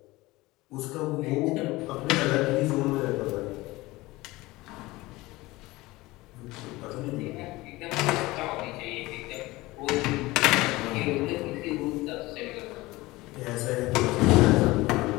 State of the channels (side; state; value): right; quieter; 20.1 dB